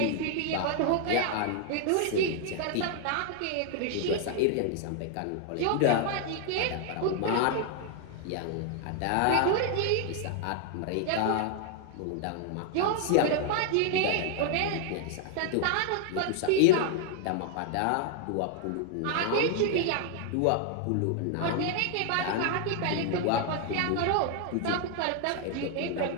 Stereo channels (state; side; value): different; both; correlation 0.00